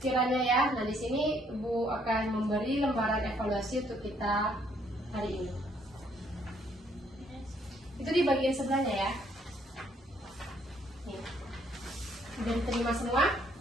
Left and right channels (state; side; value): normal; both; correlation 0.67